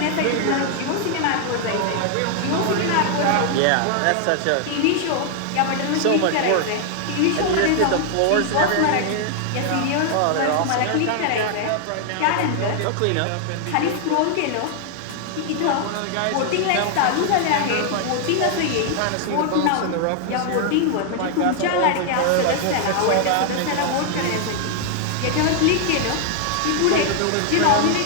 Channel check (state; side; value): different; both; correlation 0.00